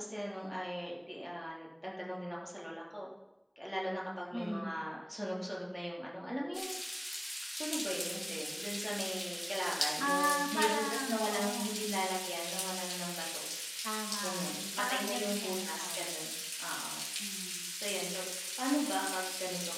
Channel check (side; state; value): both; identical; correlation 1.00